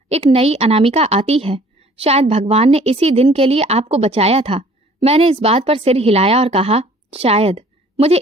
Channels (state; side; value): normal; both; correlation 0.54